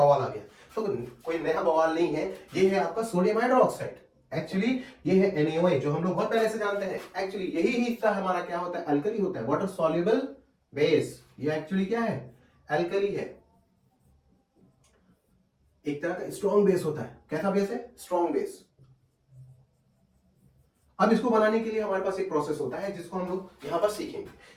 आ गया। तो कोई नया बवाल नहीं है, ये है आपका सोडियम हाइड्रोक्साइड। एक्चुअली ये है NaOH जो हम लोग बहुत पहले से जानते हैं। एक्चुअली यही हिस्सा हमारा क्या होता है, अल्कली होता है, वाटर सॉल्युबल बेस। ये एक्चुअली क्या है, अल्कली है, एक तरह का स्ट्रॉन्ग बेस होता है। कैसा बेस है, स्ट्रॉन्ग बेस। अब इसको बनाने के लिए हमारे पास एक प्रोसेस होता है जिसको हम लोग यहां पर सीखेंगे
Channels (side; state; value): both; identical; correlation 1.00